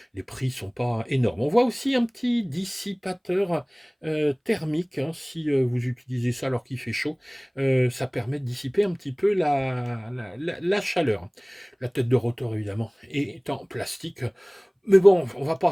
les prix sont pas énormes. On voit aussi un petit dissipateur thermique, hein, si vous utilisez ça alors qu'il fait chaud, ça permet de dissiper un petit peu la chaleur. La tête de rotor, évidemment, est en plastique. Mais bon, on va pas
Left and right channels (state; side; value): identical; both; correlation 1.00